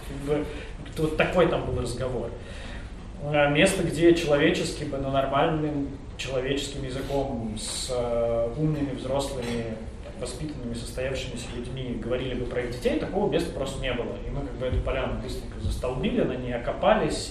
вот такой там был разговор. Место, где человечески бы, но нормальным человеческим языком с умными, взрослыми, воспитанными, состоявшимися людьми говорили бы про их детей, такого места просто не было. И мы как бы эту поляну быстренько застолбили, на ней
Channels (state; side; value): identical; both; correlation 1.00